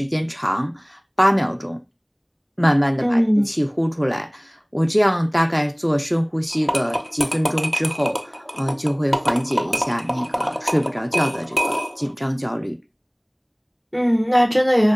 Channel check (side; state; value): both; identical; correlation 1.00